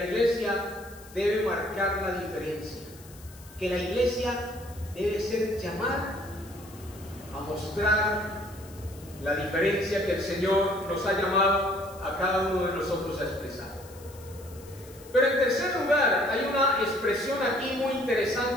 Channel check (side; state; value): left; noise; hiss, 21 dB below the sound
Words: debe marcar la diferencia. Que la iglesia debe ser llamada a mostrar la diferencia que el Señor nos ha llamado a cada uno de nosotros a expresar. Pero en tercer lugar, hay una expresión aquí muy